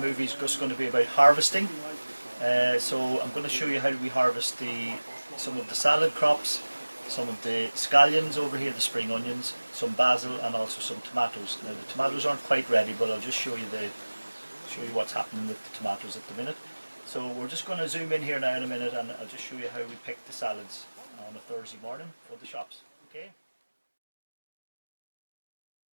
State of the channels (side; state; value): both; inverted; correlation -1.00